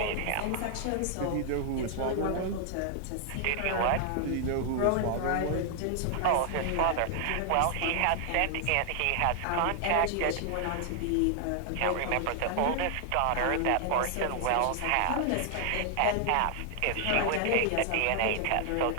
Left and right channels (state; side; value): different; both; correlation 0.00